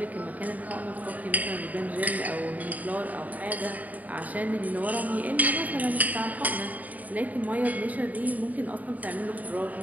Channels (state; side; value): late; left; 0.075 ms